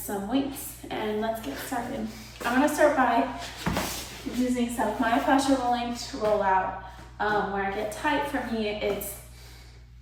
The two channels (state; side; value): identical; both; correlation 1.00